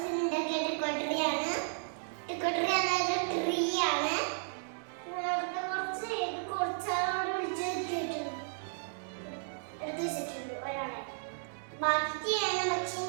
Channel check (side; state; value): left; silent; digital silence